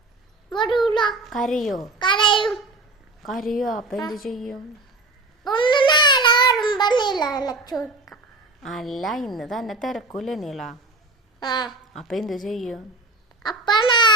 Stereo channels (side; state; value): left; quieter; 3.1 dB